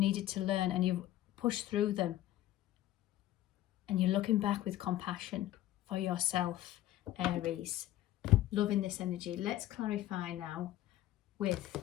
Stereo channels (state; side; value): quieter; right; 14.0 dB